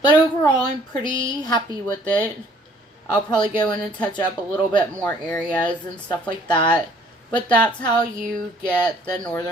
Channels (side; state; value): both; normal; correlation 0.59